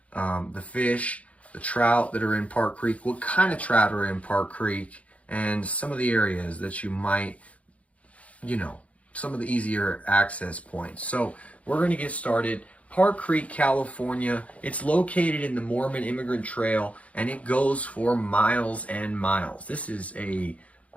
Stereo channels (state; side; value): late; right; 0.066 ms